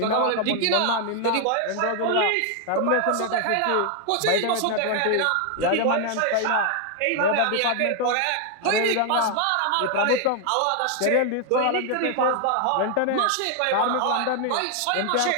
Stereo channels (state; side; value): different; both; correlation 0.00